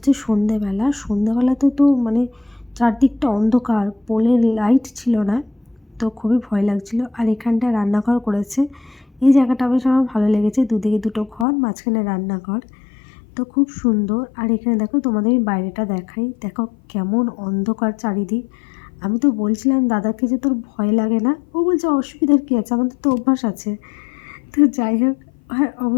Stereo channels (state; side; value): drops out; right; at 11.5 s